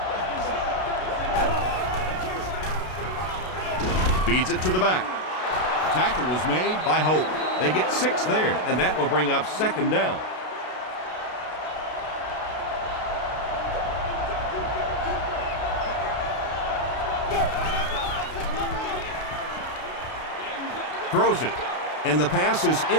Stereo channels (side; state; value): right; late; 32 ms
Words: Feeds it to the back. Tackle was made by Hope. They get 6 there, and that will bring up second down. Throws it, and the pass is